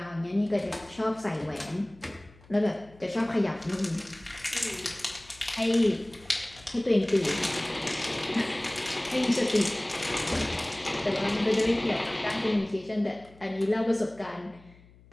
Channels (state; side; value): noise; left; hum, 25 dB below the sound